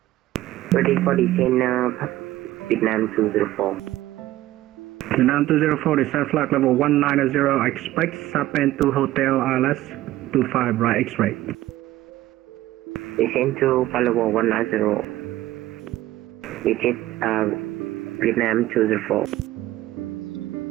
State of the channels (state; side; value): quieter; left; 15.5 dB